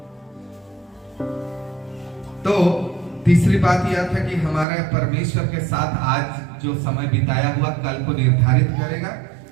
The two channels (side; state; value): left; drops out; at 4.7 s